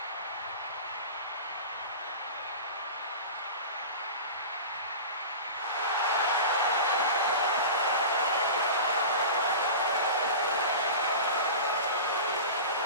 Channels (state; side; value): inverted; both; correlation -0.32